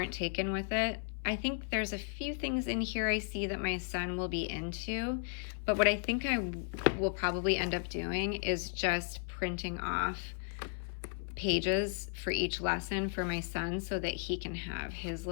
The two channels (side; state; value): right; silent; 54 dB below the other